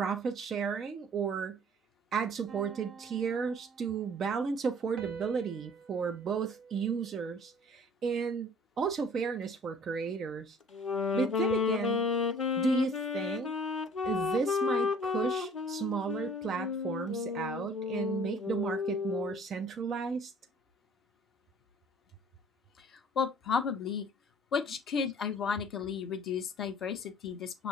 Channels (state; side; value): normal; both; correlation 0.52